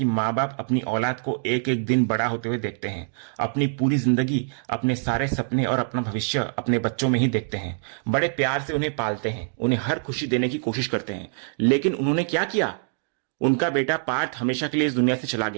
माँ बाप अपनी औलाद को एक एक दिन बड़ा होते हुए देखते हैं, अपनी पूरी जिंदगी, अपने सारे सपने और अपना भविष्य अपने बच्चों में ही देखते हैं, बड़े प्यार से उन्हें पालते हैं, उन्हें हर खुशी देने की कोशिश करते हैं। लेकिन उन्होंने क्या किया? उनका बेटा पार्थ हमेशा के लिए इस दुनिया से चला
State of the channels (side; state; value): left; silent; digital silence